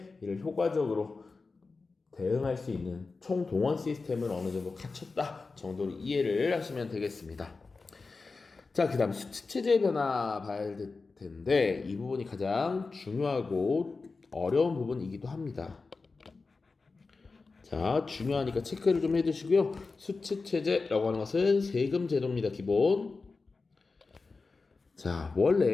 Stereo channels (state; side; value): quieter; right; 4.1 dB